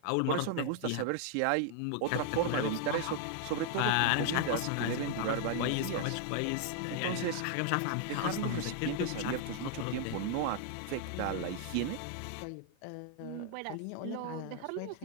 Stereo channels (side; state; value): both; different; correlation 0.00